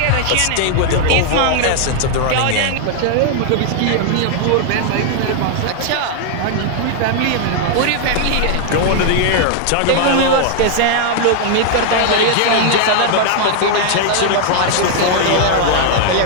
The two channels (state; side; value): different; both; correlation 0.00